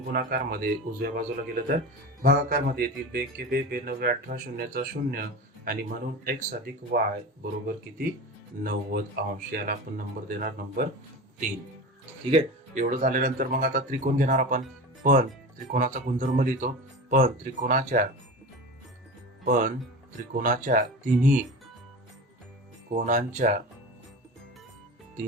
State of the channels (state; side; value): normal; both; correlation 0.29